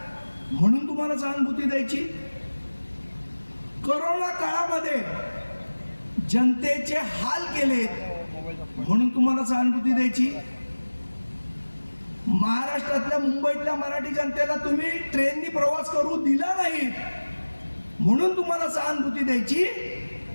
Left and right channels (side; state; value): both; inverted; correlation -1.00